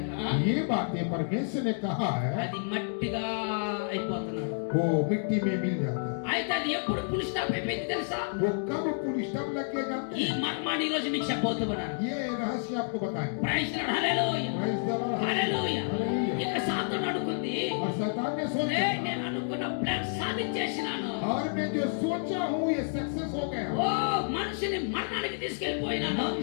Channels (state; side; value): silent; right; digital silence